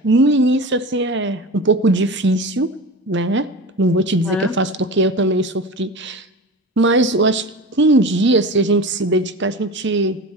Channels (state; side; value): normal; both; correlation 0.30